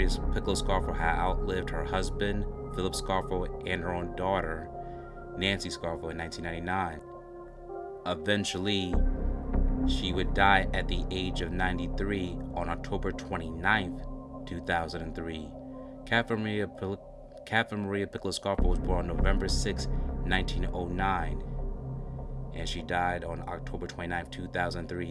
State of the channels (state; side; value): identical; both; correlation 1.00